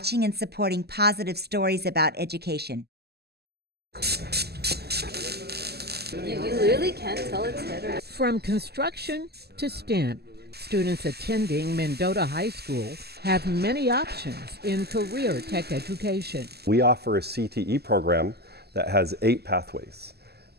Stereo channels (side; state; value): left; late; 0.46 ms